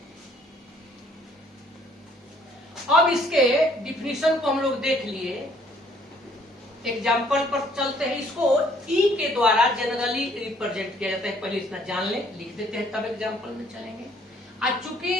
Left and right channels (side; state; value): both; normal; correlation 0.62